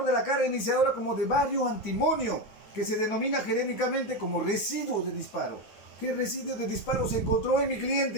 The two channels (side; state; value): right; late; 9.4 ms